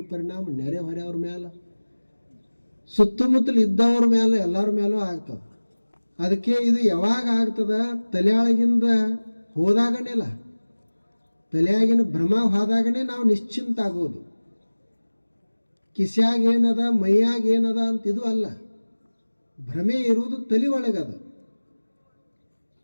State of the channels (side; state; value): both; inverted; correlation -1.00